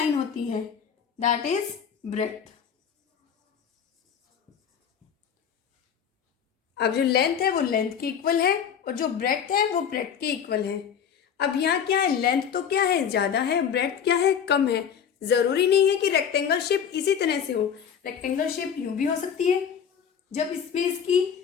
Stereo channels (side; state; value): right; quieter; 7.8 dB